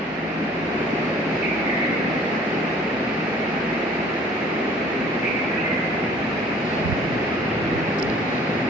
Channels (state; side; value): normal; both; correlation 0.52